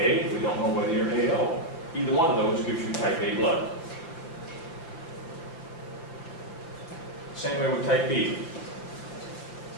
we don't know whether you're AO. Either one of those gives you type A blood. Same way with type B.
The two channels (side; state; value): right; late; 6.0 ms